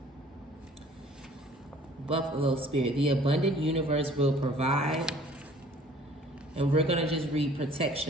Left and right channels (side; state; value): both; normal; correlation 0.53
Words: Buffalo Spirit, the abundant universe will provide. And we're going to just read